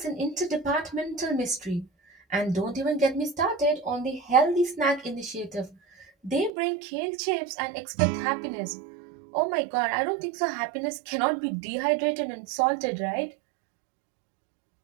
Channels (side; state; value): left; drops out; at 6.5 s